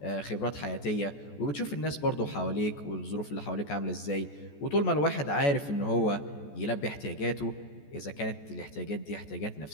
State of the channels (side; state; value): right; late; 14 ms